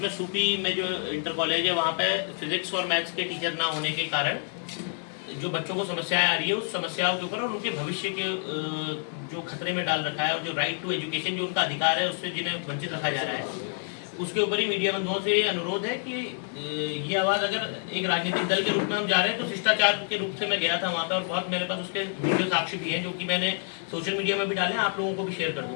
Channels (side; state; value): right; silent; 59 dB below the other